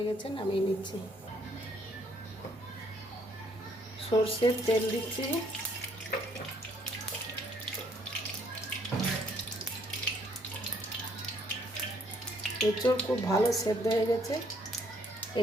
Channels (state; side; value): normal; both; correlation 0.66